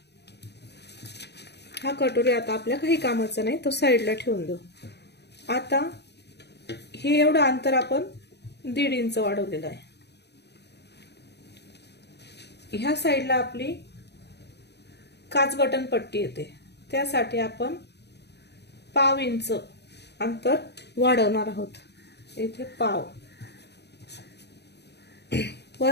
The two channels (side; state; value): right; late; 0.49 ms